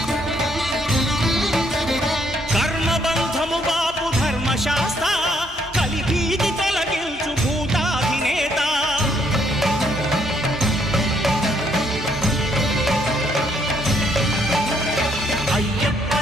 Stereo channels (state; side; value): normal; both; correlation 0.70